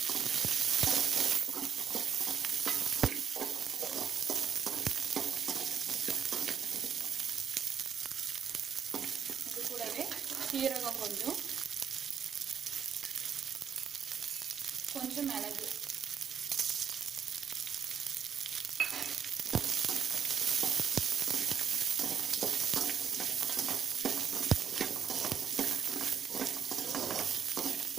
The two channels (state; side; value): quieter; left; 7.8 dB